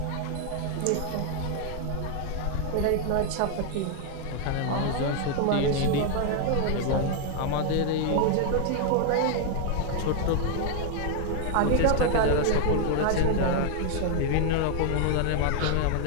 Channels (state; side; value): different; both; correlation 0.00